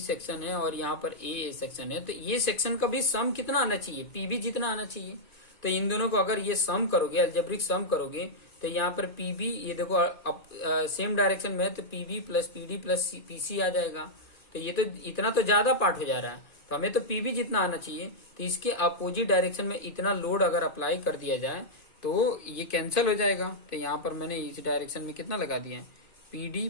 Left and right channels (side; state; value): right; late; 2.4 ms